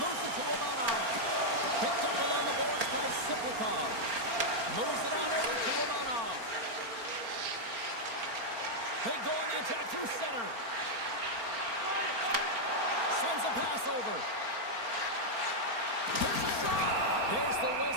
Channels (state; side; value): late; left; 4.4 ms